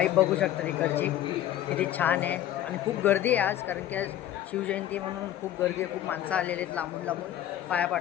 बघू शकता तिकडची किती छान आहे. आणि खूप गर्दी आहे आज, कारण की आज शिवजयंती म्हणून खूप गर्दी आहे. खूप माणसं आलेली आहेत लांबून लांबून पाया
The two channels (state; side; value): quieter; right; 12.3 dB